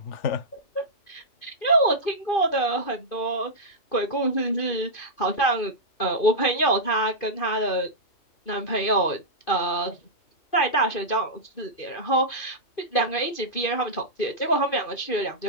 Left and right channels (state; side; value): late; right; 2.5 ms